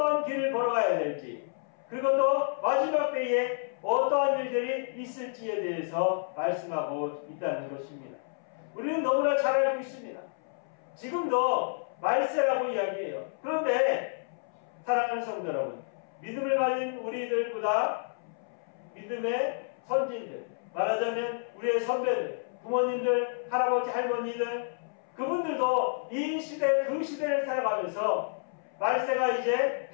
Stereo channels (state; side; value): silent; right; 58 dB below the other